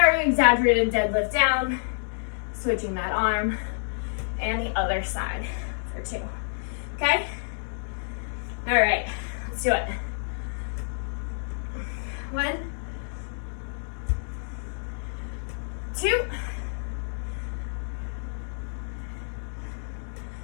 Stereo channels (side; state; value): right; silent; digital silence